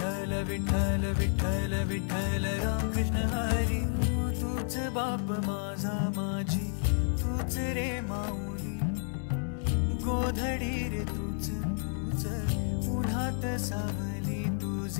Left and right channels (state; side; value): silent; right; 57 dB below the other